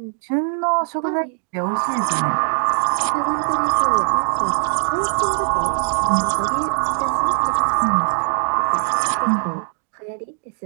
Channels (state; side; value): silent; left; digital silence